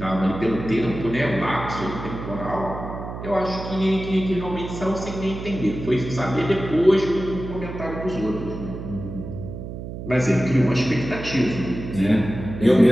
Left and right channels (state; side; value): noise; right; hum, 9 dB below the sound